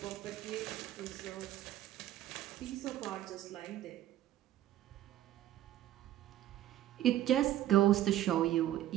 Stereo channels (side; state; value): left; quieter; 13.3 dB